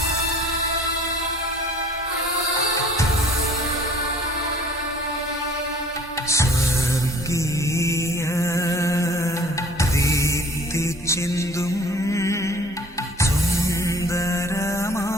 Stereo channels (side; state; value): both; normal; correlation 0.50